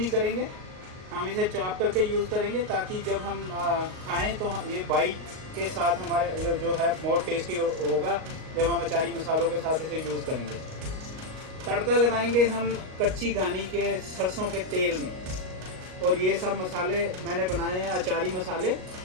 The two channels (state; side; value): late; left; 38 ms